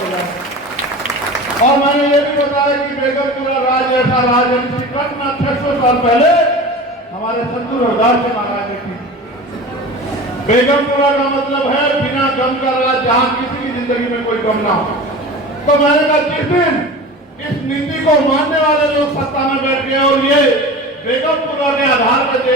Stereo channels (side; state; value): both; normal; correlation 0.34